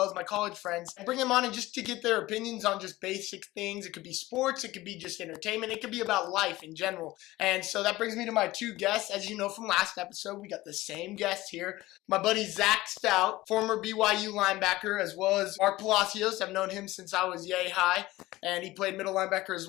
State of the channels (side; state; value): right; quieter; 18.1 dB